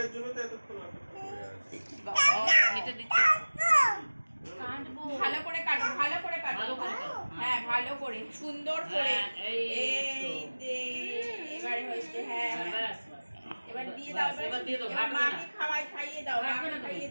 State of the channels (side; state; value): both; inverted; correlation -1.00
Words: জন্য তো এতক্ষণ অপেক্ষা করে আছে এটা দিচ্ছে। কাটবো। ভালো করে কাটো, ভালো করে কাটো। ভালো করে কাটো। হ্যাঁ ভালো করে, সুন্দর করে। হ্যাঁ, এই এই যে এবারে হয়েছে। হ্যাঁ হ্যাঁ, হ্যাঁ। ব্যাস, ব্যাস। এবার দিয়ে দাও, এবার দিয়ে দাও, এবার ভাগ করে মাকে খাইয়ে দাও, ভাগ মাকে করে দাও। খাইয়ে